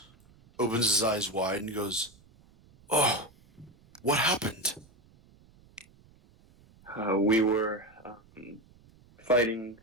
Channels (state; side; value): noise; right; rumble, 28 dB below the sound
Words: opens his eyes wide and goes, "Oh, what happened?" We were fighting